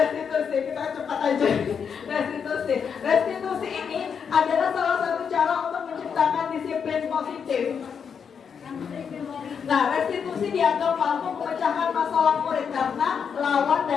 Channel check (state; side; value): quieter; right; 6.8 dB